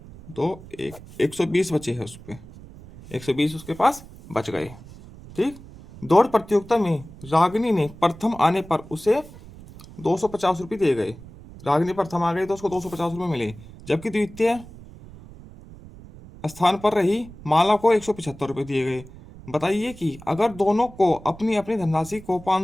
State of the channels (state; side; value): noise; right; rumble, 18 dB below the sound